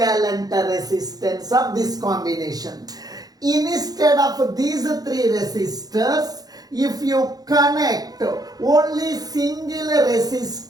resistance of this combination. Instead of these three resistors, if you connect only single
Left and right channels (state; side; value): late; left; 0.19 ms